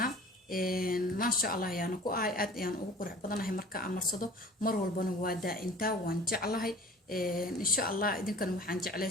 ما شاء الله يعني كو آد يعني وقرح بدنا هي مركا أمرصدو مر والبنا وادا إنتا وانجعلها إن شاء الله إذا كانوا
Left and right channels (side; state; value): both; normal; correlation 0.45